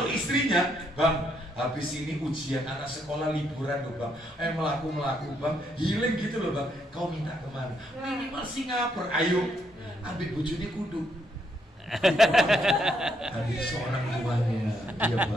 istrinya, bang, habis ini ujian anak sekolah liburan loh bang, melaku bang, healing gitu loh bang. Kau minta kemana? Minimal Singapura, ayo, ambil bojone kudu. Ada seorang tuanya, dia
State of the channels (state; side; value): normal; both; correlation 0.75